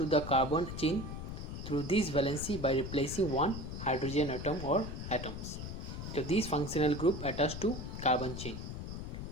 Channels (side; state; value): left; noise; rumble, 7 dB below the sound